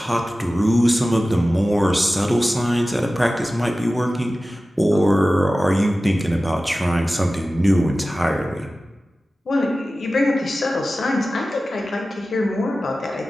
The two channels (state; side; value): normal; both; correlation 0.95